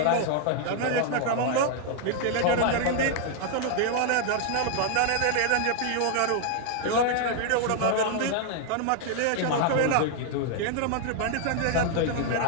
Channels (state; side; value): different; both; correlation 0.00